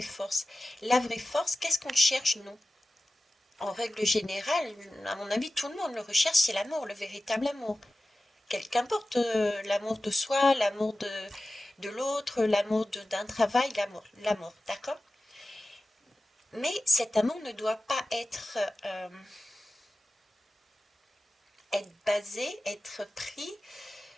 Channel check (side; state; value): both; normal; correlation 0.95